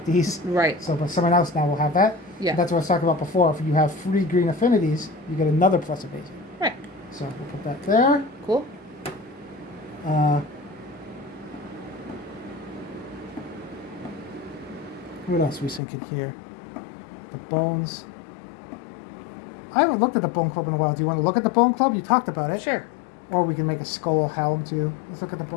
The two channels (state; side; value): drops out; right; at 15.8 s